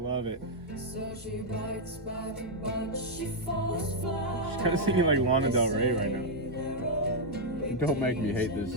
it. So she bites back, but she falls flat. She's kind of singing like Lana Del Rey right now. Don't make me hate this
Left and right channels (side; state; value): both; normal; correlation -0.02